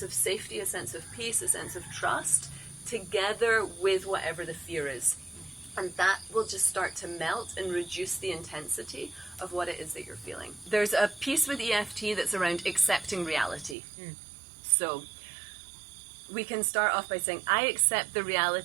of safety, a sense of peace, a sense of trust, together with whatever the fear is. And that will just start to melt and reduce the intensity of what it is that you're feeling. There's a piece with EFT that's around accepting reality. So we can start off by saying, I accept the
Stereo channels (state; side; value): drops out; left; at 13.8 s